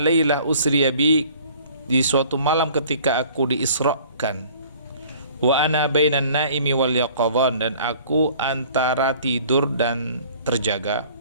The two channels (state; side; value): inverted; both; correlation -0.51